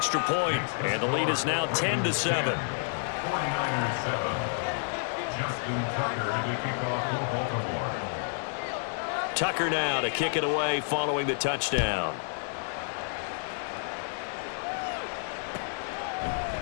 point, and the lead is now 10-7. Tucker now to kick it away following the touchdown.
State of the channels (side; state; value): right; silent; digital silence